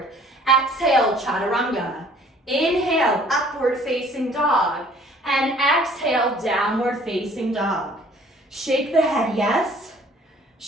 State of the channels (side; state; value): both; normal; correlation 0.55